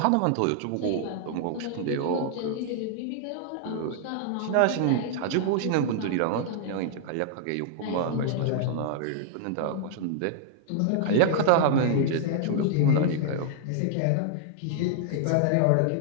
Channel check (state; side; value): different; both; correlation -0.01